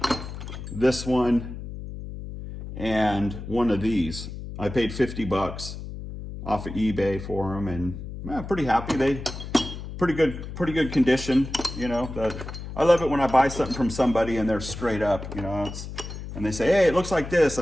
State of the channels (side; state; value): left; noise; hum, 9 dB below the sound